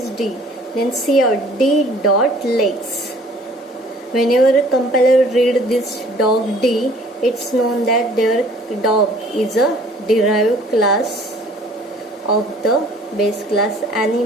D. Then see out D dot legs. Whenever a compiler read this dog D, it's known that their dog is a derived class of the base class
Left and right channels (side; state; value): both; normal; correlation 0.54